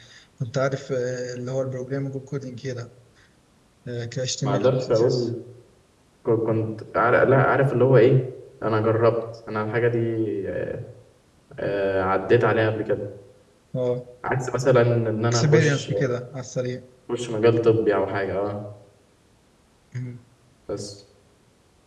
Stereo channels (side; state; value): both; identical; correlation 1.00